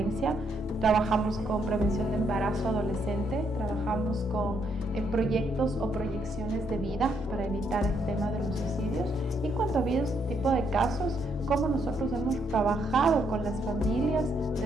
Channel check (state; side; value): normal; both; correlation 0.74